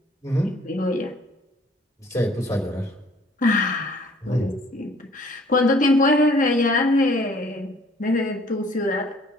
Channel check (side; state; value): both; normal; correlation 0.57